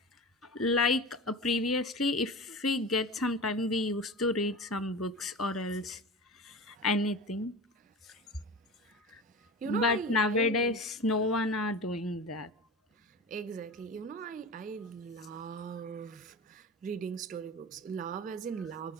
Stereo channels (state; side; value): normal; both; correlation 0.31